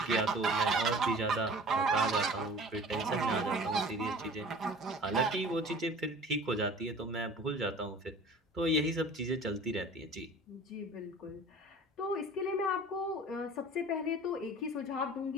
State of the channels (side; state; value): both; normal; correlation 0.43